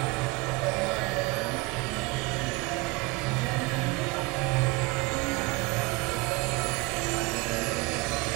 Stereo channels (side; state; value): left; quieter; 24.4 dB